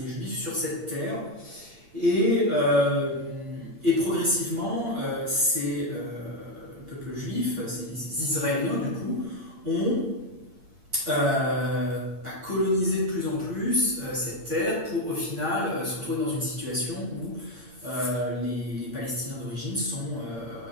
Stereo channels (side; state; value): left; late; 8.7 ms